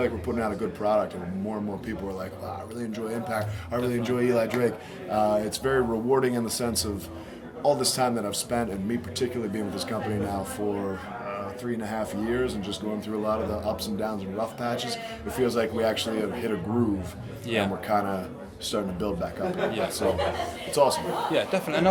like we're putting out a good product, and more and more people are like, wow, I really enjoy Impact, I really enjoy Eli Drake. It's very rewarding in the sense of all this time that I've spent, and me particularly being with this company now for 3.5 years and just going through a lot of the ups and downs and rough patches, it feels like we actually have hit a groove, Yeah. and we're kind of starting to build back up again. Yeah. So it's awesome. Yeah, definitely. And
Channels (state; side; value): identical; both; correlation 1.00